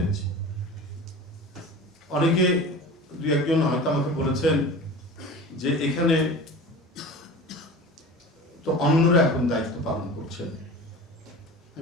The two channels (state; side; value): normal; both; correlation 0.35